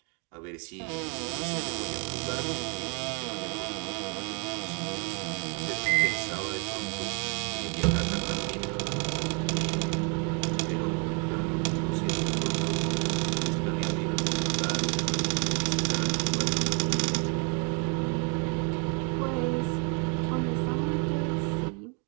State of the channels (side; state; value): left; quieter; 33.9 dB